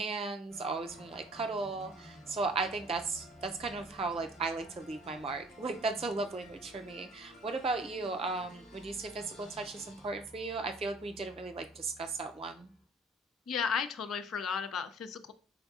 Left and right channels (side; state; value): both; normal; correlation 0.53